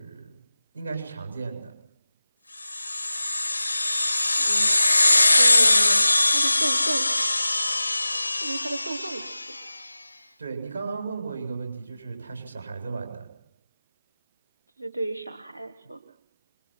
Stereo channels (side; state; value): both; inverted; correlation -0.95